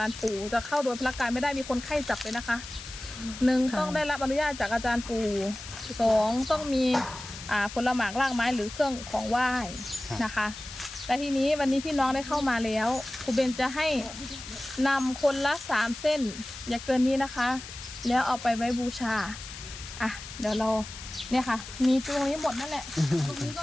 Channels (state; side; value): noise; left; hiss, 12 dB below the sound